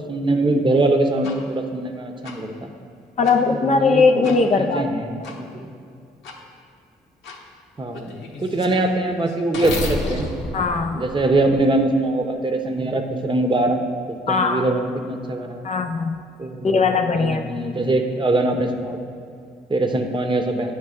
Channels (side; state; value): both; normal; correlation 0.61